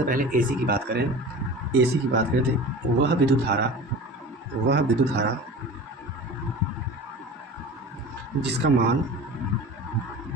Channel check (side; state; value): both; normal; correlation 0.36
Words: पहले एसी की बात करें, एसी की बात करें तो वह विद्युत धारा जिसका